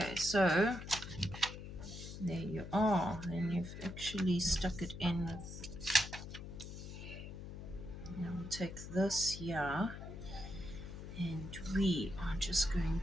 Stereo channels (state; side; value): noise; left; hum, 10 dB below the sound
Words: so there you are. And you've actually stuck it in with... Now we'll take this here. And we are just going